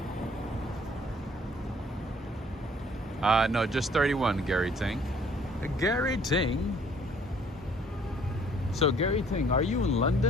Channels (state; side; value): normal; both; correlation 0.59